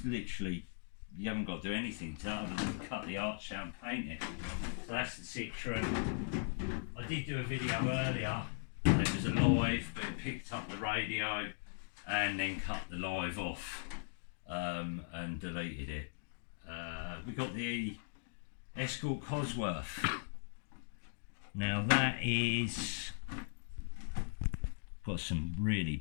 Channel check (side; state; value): right; silent; digital silence